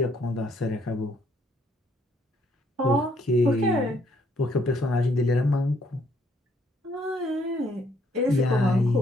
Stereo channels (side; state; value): both; normal; correlation 0.68